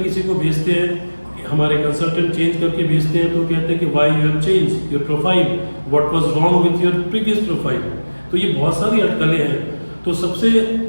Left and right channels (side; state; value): both; inverted; correlation -1.00